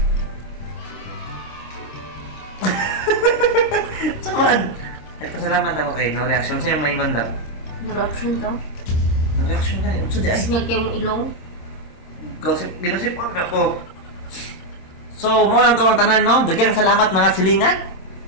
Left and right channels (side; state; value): right; late; 26 ms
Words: Saman. Nagpasalamat ako kay no reaction. Sa'yo maingon lang. No reaction to? No reaction na yun. So, di ay. Sinyag kayo mong ilong? Ginasip ako. So, mo lang ito ang tanan, no? Dagang salamat mga silingan.